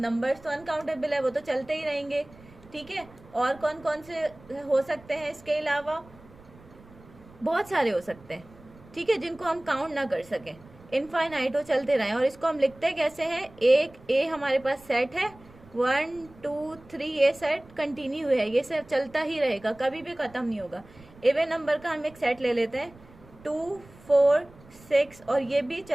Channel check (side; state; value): right; noise; rumble, 23 dB below the sound